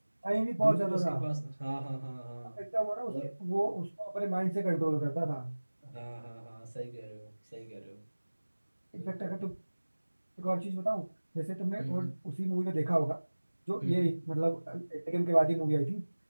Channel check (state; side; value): inverted; both; correlation -1.00